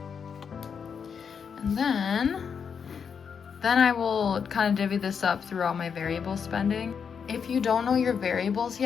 And then I will kind of divvy this up through all my variable spending. If you don't know your variables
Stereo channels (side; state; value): right; quieter; 6.6 dB